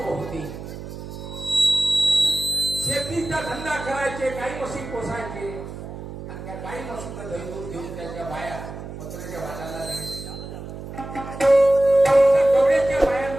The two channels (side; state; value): right; noise; hum, 10 dB below the sound